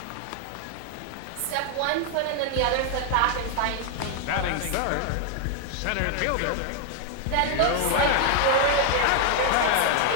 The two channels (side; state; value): both; different; correlation 0.00